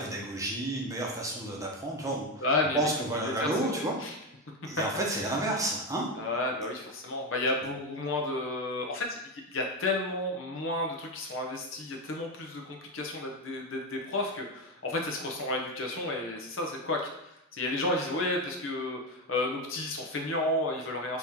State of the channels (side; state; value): both; normal; correlation 0.13